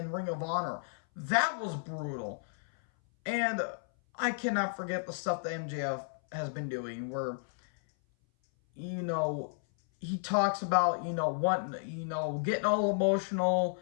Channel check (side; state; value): right; silent; 56 dB below the other